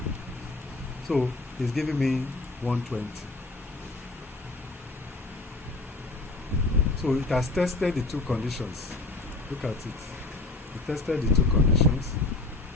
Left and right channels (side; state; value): right; quieter; 3.2 dB